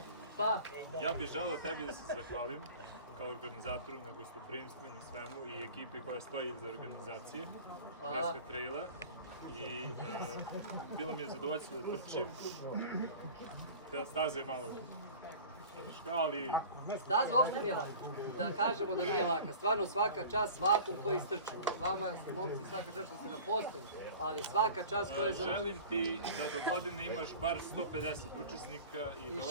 Pa? Ja bih želeo tebi da se zahvalim kao organizatoru na gostoprimstvu i na svemu i ekipi koja stoji iza organizacije Treska traila. I bilo mi je zadovoljstvo da trčim. Staza je malo teška, ali... Staza uopšte nije laka. Da kažemo da nije laka. Stvarno svaka čast svakom koji istrču. Vama, momci, svaka čast što ste na postoju, ali svaka čast koja je za... Želim ti da do godine imaš bar 150 učesnika i da ova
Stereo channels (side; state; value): both; inverted; correlation -0.40